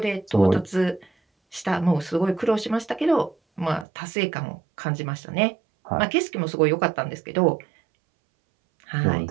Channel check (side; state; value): left; drops out; at 3.9 s